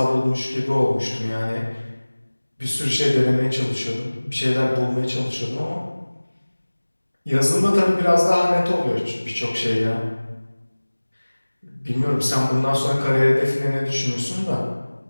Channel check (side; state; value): both; inverted; correlation -1.00